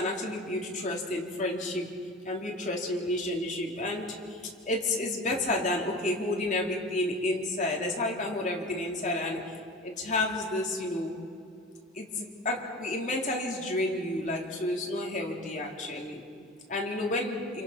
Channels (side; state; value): both; normal; correlation 0.35